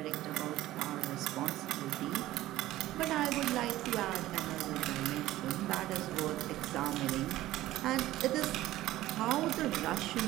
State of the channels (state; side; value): quieter; left; 15.5 dB